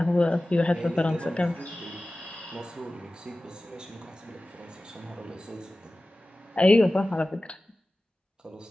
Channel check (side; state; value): both; normal; correlation 0.96